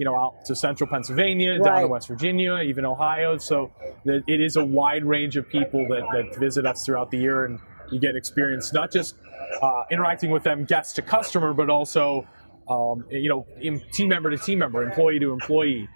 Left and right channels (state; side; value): inverted; both; correlation -1.00